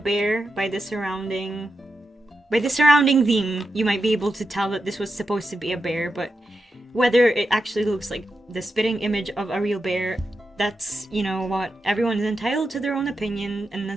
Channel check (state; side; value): normal; both; correlation 0.88